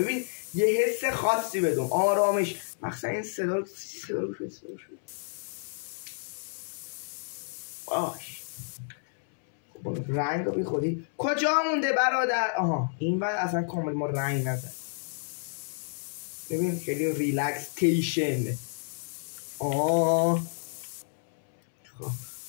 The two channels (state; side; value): silent; right; 58 dB below the other